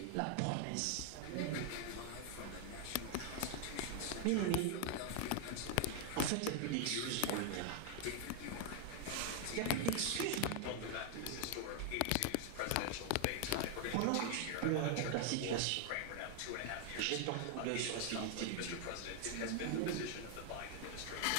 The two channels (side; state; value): both; different; correlation 0.00